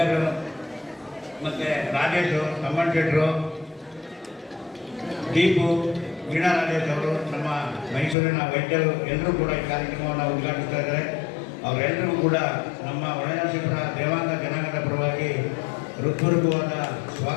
ಮತ್ತು ರಾಜೇಶು, ತಮ್ಮಣ್ಣ ಶೆಟ್ಟರು, ದೀಪು, ವೀಣಾ ರಾಜೇಶ್ ಅವರು, ನಮ್ಮ ಮೈಸೂರಿನ ವೈದ್ಯರು ಎಲ್ಲರೂ ಕೂಡ ಈ ಕಾರ್ಯಕ್ರಮವನ್ನು ಉದ್ಘಾಟಿಸ್ತಾ ಇದ್ದಾರೆ. ಅವರೆಲ್ಲರಿಗೂ ಕೂಡ ನಮ್ಮ ಒಳನರಸೀಪುರ ದೇವಾಂಗ ಜನಾಂಗದ ಪರವಾಗಿ ಹೃತ್ಪೂರ್ವಕವಾದ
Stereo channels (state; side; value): drops out; right; at 8.2 s